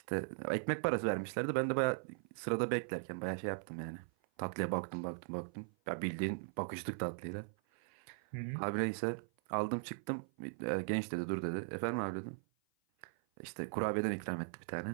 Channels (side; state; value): left; silent; 52 dB below the other